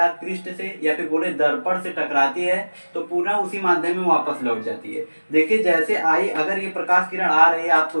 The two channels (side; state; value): both; inverted; correlation -1.00